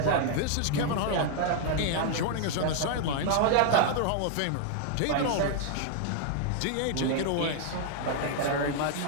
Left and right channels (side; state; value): both; different; correlation 0.00